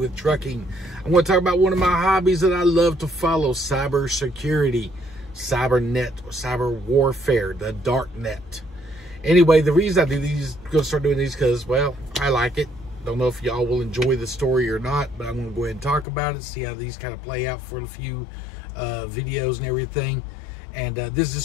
trucking. I'm gonna talk about one of my hobbies that I love to follow, cyber security, cybernet, cyber warfare, the dark net. Anyway, the reason I do these, gonna start doing these because, well, I like it. Don't know if y'all will enjoy the story or not, but I'm gonna go ahead and talk about it, see how these kind of play out for a few videos and everything. And this is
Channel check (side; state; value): right; drops out; at 16.1 s